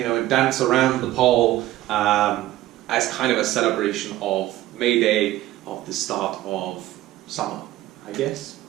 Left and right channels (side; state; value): left; quieter; 15.2 dB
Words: and dance around the pole as kind of a celebration of May Day, of the start of summer, I guess.